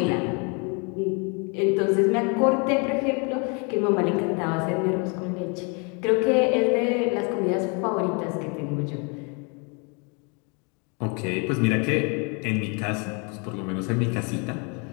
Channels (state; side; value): quieter; right; 34.1 dB